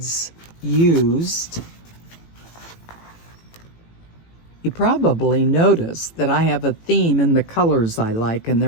used. You probably noticed that I have a theme in the colors I like, and they're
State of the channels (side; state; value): right; late; 18 ms